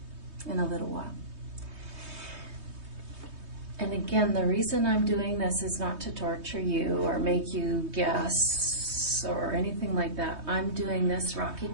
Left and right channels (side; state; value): left; late; 3.2 ms